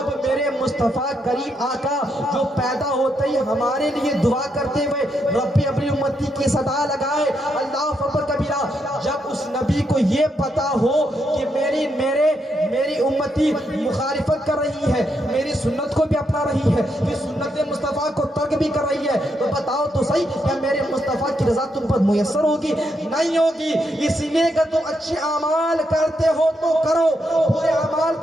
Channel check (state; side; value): normal; both; correlation 0.80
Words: میرے مصطفیٰ کریم آقا جو پیدا ہوتے ہی ہمارے لیے دعا کرتے ہوئے ربی اپنی امتی کی صدا لگائے اللہ اکبر کبیرہ, جب اس نبی کو یہ پتا ہو کہ میری امتی مخالفت کر رہی ہے, میری سنت کو بھی اپنا رہی ہے, پھر سنت مصطفیٰ کو ترک بھی کر رہی ہے, تو بتاؤ تو صحیح کیا میرے مصطفیٰ کی رضا تم پر میسر ہوگی؟ نہیں ہوگی. اسی لیے کہ تم اچھے اعمال کرتے ہو تو کرو, برے اعمال